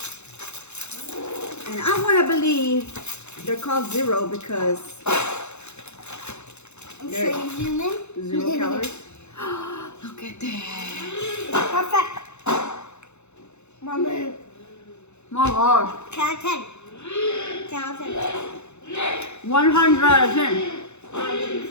And I want to believe they're called zero because I'm There. sure you zoom in. 0 calories. Look at that. Perfect. Mommy. My gosh. 10 out of 10. 10 out of 10. 100 out of 10. You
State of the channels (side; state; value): right; late; 0.82 ms